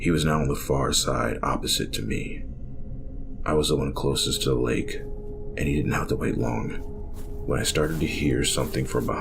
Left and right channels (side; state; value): both; identical; correlation 1.00